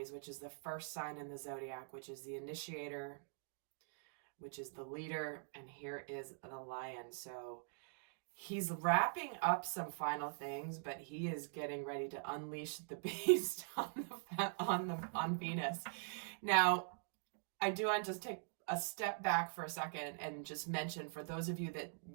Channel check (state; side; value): silent; left; digital silence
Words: which is the first sign in the zodiac, which is the initiator, which is the leader. And here is the lion. So he's wrapping up some final things, but he is getting ready to unleash the beast on Venus. Now, I do want to just take a step back for a second and just mention, for those of you that